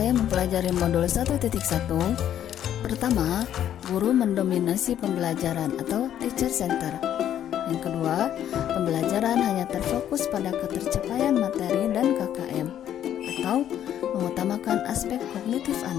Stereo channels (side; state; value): right; quieter; 10.6 dB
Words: mempelajari modul 1.1? Pertama, guru mendominasi pembelajaran atau teacher center. Yang kedua, pembelajaran hanya terfokus pada ketercapaian materi dan KKM atau mengutamakan aspek kognitif